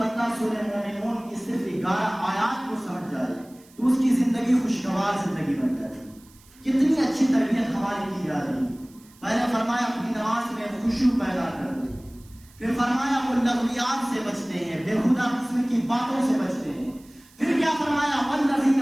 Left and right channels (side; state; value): right; noise; hiss, 27 dB below the sound